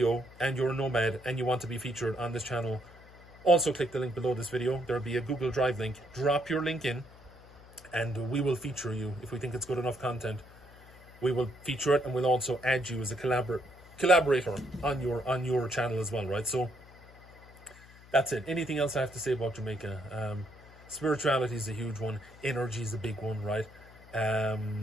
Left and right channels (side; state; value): left; noise; hum, 22 dB below the sound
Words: and you're a nomad and you want to be featured on this channel, also click the link below this video. There'll be a Google Drive link. Drop your link in and we will feature you. If we think it's good enough content, we will feature it, and we'll also add you as a collaborator on your channel as well, right? So that's it. Anything else I have to say about Jamaica? Spirituality is a huge one. Energy is a big one, right?